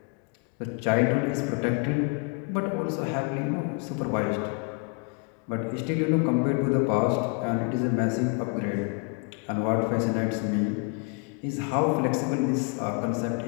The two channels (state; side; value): quieter; right; 33.2 dB